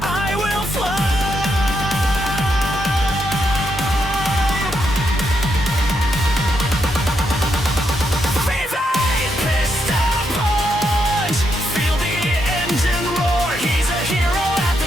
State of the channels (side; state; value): both; normal; correlation 0.80